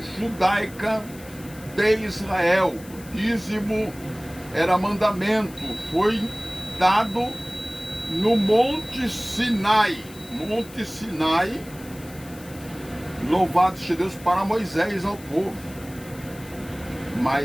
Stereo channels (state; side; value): noise; left; hiss, 20 dB below the sound